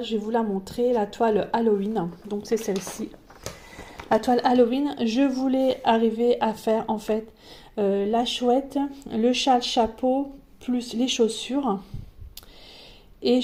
je vais vous la montrer, la toile Halloween. Donc c'est celle-ci. La toile Halloween, je voulais arriver à faire en fait la chouette, le châle chapeau, plus les chaussures. Et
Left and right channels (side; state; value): both; identical; correlation 1.00